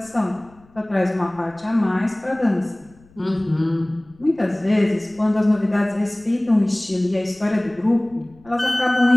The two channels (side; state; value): left; noise; rumble, 28 dB below the sound